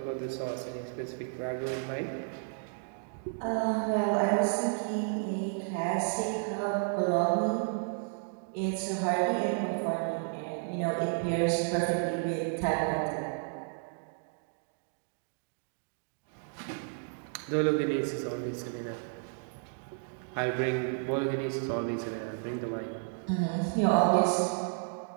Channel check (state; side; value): silent; left; 56 dB below the other